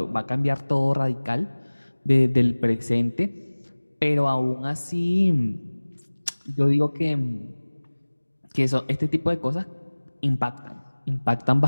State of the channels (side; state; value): both; inverted; correlation -1.00